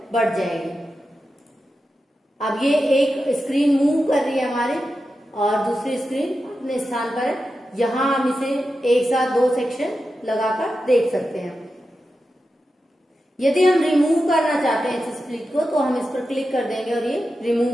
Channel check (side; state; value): both; normal; correlation 0.90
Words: बढ़ जाएगी। अब ये एक स्क्रीन मूव कर रही है हमारे और दूसरी स्क्रीन अपने स्थान पर है। यहां हम इसे एक साथ 2 सेक्शन लगाकर देख सकते हैं। यदि हम रिमूव करना चाहते हैं इस स्प्लिट को तो हम इस पर क्लिक कर देंगे और ये